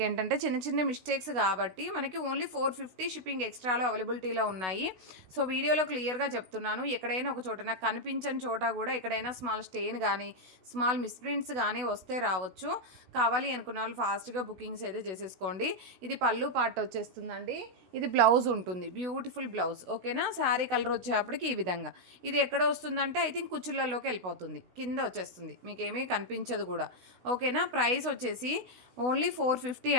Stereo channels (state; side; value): late; left; 16 ms